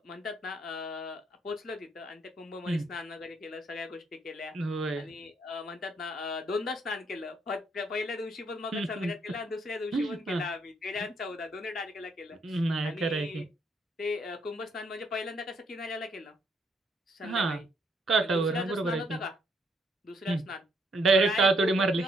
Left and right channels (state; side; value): normal; both; correlation 0.72